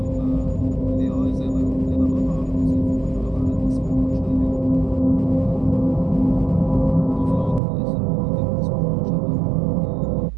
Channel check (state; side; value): drops out; left; at 7.6 s